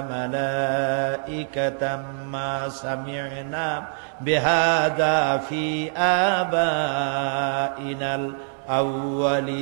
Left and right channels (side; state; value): left; silent; 62 dB below the other